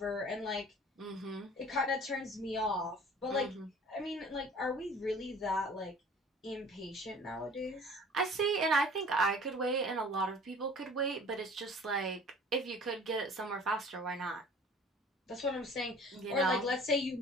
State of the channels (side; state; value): both; normal; correlation 0.47